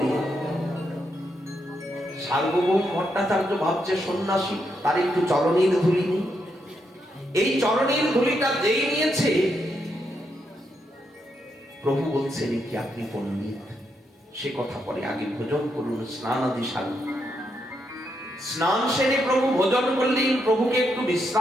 সার্বভৌম ভট্টাচার্য ভাবছে সন্ন্যাসী, তার একটু চরণের ধুলি নেই। এই চরণের ধুলিটা যেই নিয়েছে, প্রভু বলছেন কি আপনি পণ্ডিত, সে কথা পরে, আগে ভোজন করুন, স্নান আদি সারুন। স্নান সেরে প্রভু ভোজন করলেন, প্রভুকে একটু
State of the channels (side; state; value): both; normal; correlation 0.80